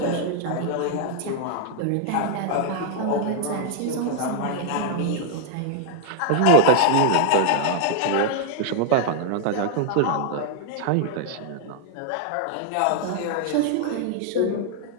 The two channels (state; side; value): different; both; correlation 0.00